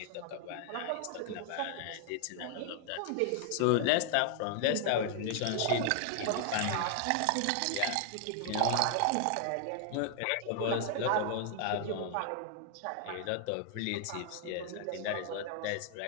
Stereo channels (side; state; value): both; different; correlation 0.00